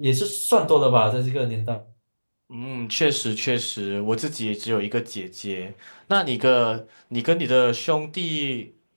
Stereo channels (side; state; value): both; inverted; correlation -1.00